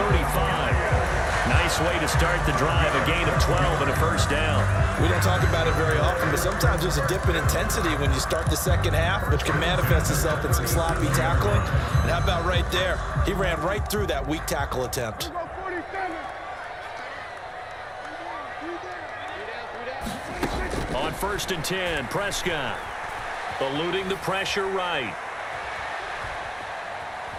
Nice way to start the drive, a gain of 12 and a first down. We don't talk about it very often, but sometimes there's a dip in intensity when you start the second half, which can manifest itself in some sloppy tackling. And how about right there? He ran right through that weak tackle attempt. On 1st and 10, Prescott eluding the pressure right.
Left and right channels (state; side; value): identical; both; correlation 1.00